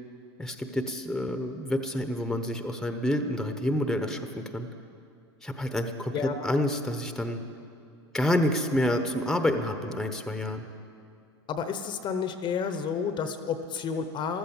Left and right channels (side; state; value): both; normal; correlation 0.62